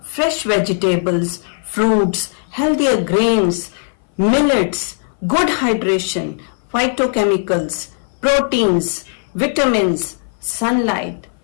fresh vegetables, fruits, healthier grains, millets, good hydration, phytochemicals, proteins, vitamins, sunlight,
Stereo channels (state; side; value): silent; right; 60 dB below the other